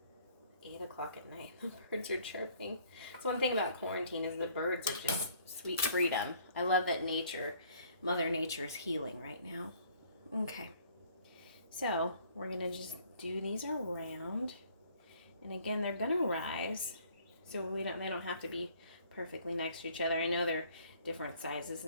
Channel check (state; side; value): inverted; both; correlation -0.59